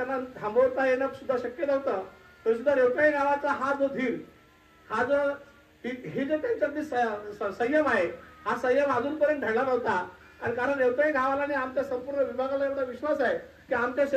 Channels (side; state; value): both; identical; correlation 1.00